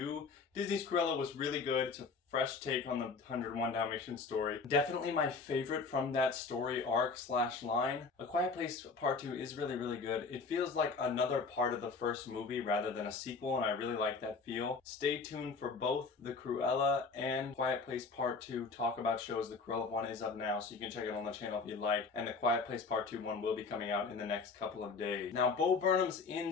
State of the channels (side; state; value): right; quieter; 4.6 dB